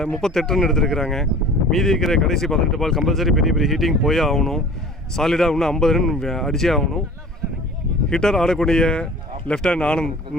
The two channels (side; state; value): both; normal; correlation 0.44